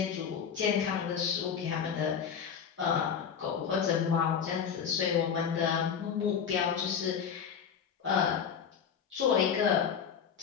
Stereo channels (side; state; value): right; quieter; 7.3 dB